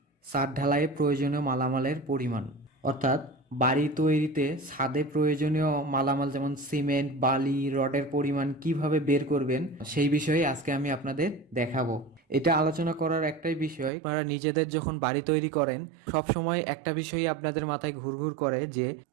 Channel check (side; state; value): left; drops out; at 13.9 s